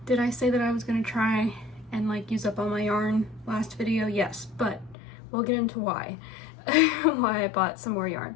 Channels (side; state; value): right; drops out; at 5.0 s